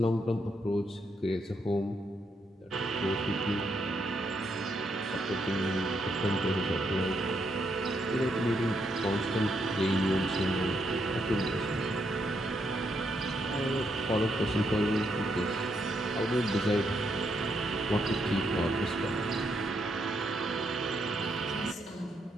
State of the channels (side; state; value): both; normal; correlation 0.78